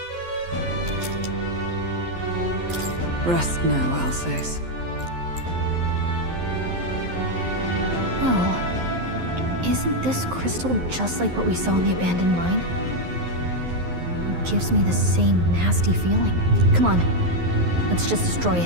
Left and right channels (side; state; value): left; late; 11 ms